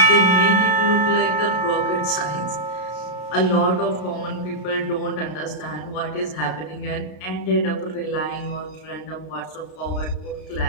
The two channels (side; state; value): right; late; 33 ms